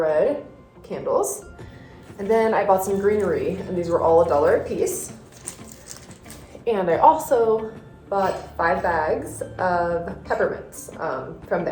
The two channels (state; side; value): identical; both; correlation 1.00